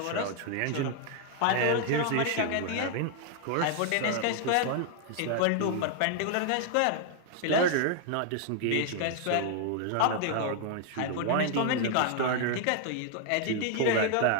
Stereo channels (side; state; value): both; different; correlation 0.00